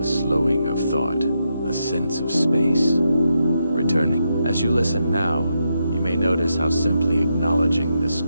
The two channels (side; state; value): both; inverted; correlation -0.84